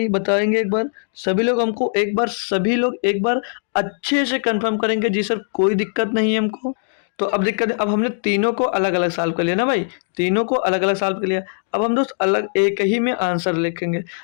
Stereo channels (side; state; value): right; silent; 66 dB below the other